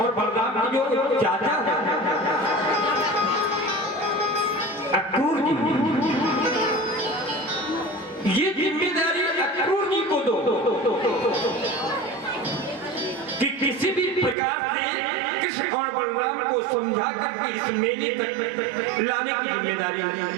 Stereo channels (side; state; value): left; drops out; at 14.4 s